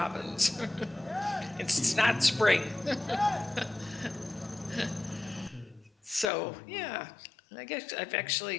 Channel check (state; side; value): drops out; right; at 6.3 s